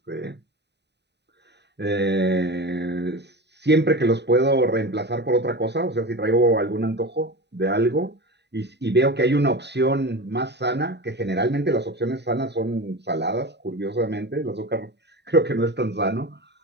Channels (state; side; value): late; left; 0.50 ms